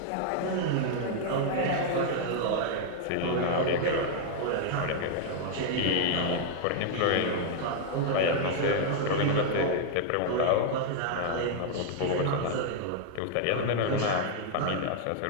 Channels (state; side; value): different; both; correlation -0.01